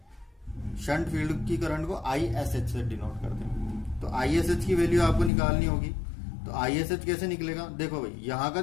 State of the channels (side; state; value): right; drops out; at 5.3 s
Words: शंट फील्ड की करंट को ISH से डिनोट करते हैं। तो ISH की वैल्यू आपको निकालनी होगी। तो ISH कैसे निकलेगा? देखो भाई यहां का